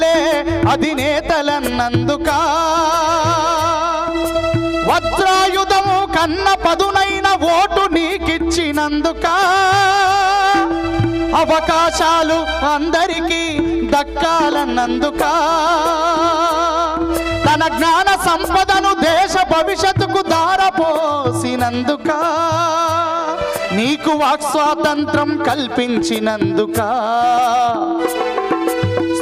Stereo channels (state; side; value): identical; both; correlation 1.00